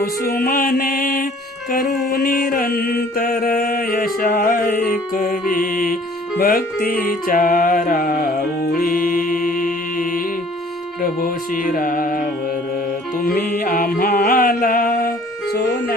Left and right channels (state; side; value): normal; both; correlation 0.54